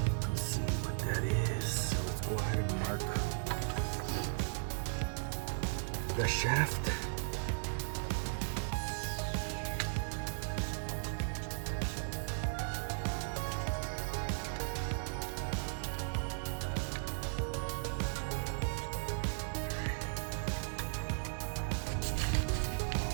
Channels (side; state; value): left; silent; digital silence